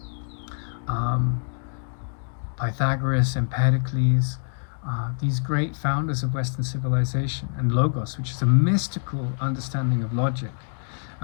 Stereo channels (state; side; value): silent; right; digital silence